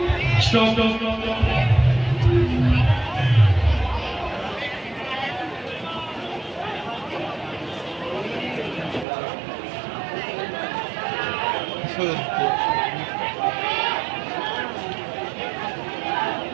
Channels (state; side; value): drops out; left; at 9.1 s